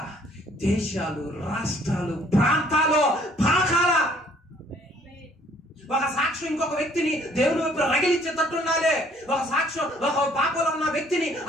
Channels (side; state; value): both; normal; correlation 0.60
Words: దేశాలు, రాష్ట్రాలు, ప్రాంతాలు పాకాల. ఒక సాక్ష్యం ఇంకొక వ్యక్తిని దేవుని వైపు రగిలించేటట్టు ఉండాలి. ఒక సాక్ష్యం ఒక పాపంలో ఉన్న వ్యక్తిని,